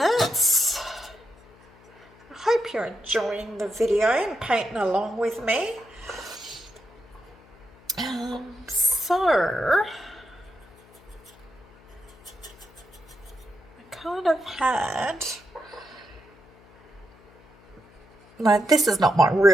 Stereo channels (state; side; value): noise; left; hum, 26 dB below the sound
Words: I hope you're enjoying the video and painting along with me. So I kind of had, no, this is not my